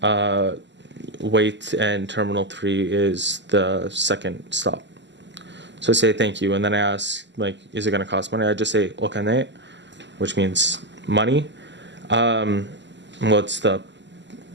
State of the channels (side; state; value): left; late; 0.53 ms